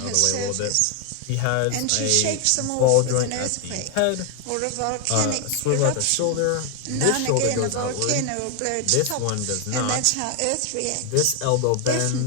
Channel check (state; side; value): different; both; correlation 0.00